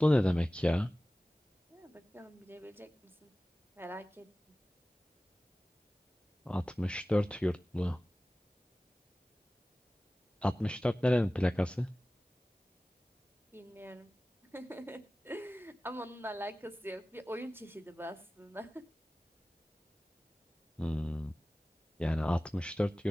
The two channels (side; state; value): both; normal; correlation 0.97